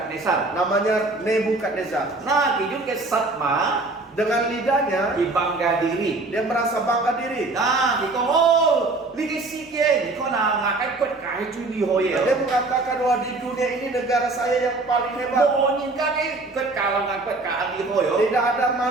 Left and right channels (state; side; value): quieter; left; 3.2 dB